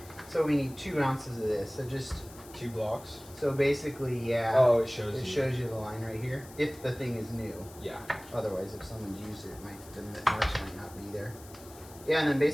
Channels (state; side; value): noise; left; hiss, 20 dB below the sound